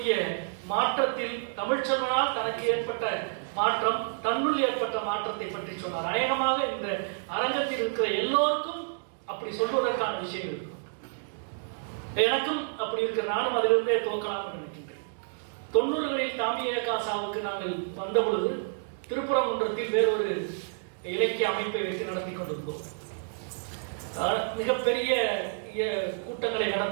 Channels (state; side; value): silent; left; digital silence